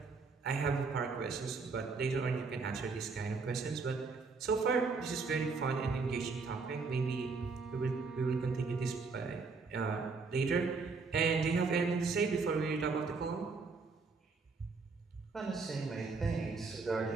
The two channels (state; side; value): quieter; left; 4.4 dB